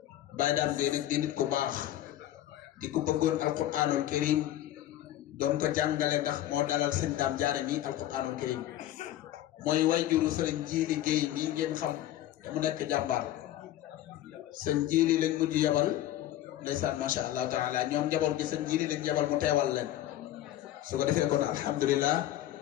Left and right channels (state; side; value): quieter; right; 13.3 dB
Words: Baye Dame Gueye nak di nit ku baax di ko bëggoon alquranul karim doon ko jàngale ndax moo dalal sëñ Dame Diané mi alquranul karim mooy wayjuru sëriñ Jili Gueye mi ngeen xam te mu nekk jàmbaar sëñ Jili lañ mujj yabal ndeysaan macha allah taala ñoom njaboot gi sëñ Jili lañ yabal mu teewal leen su ko defee kon alhamdulilah